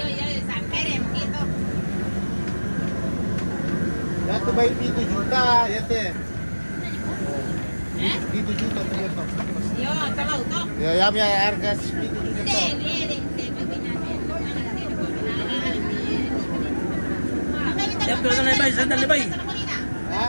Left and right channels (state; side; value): inverted; both; correlation -1.00